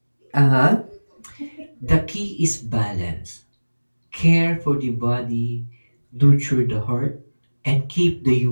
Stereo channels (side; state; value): both; inverted; correlation -1.00